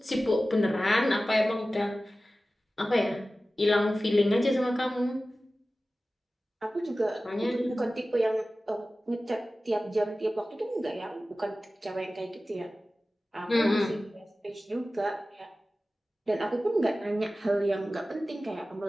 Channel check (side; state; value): both; normal; correlation 0.96